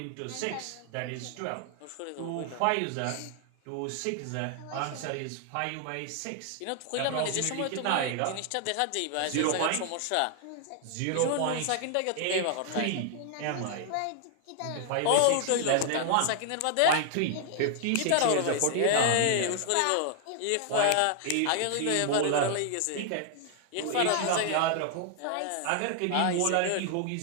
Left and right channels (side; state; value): both; different; correlation 0.00